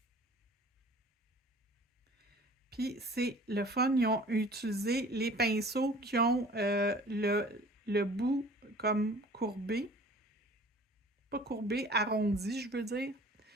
Puis c'est le fun, ils ont utilisé les pinceaux qui ont le bout comme courbé. Pas courbé, arrondi, je veux dire.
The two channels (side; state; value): both; normal; correlation 0.48